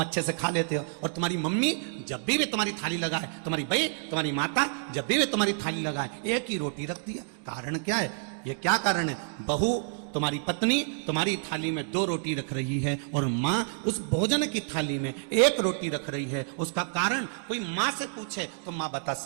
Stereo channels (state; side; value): silent; left; digital silence